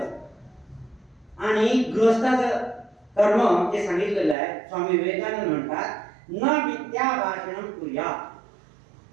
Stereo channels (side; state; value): left; drops out; at 4.4 s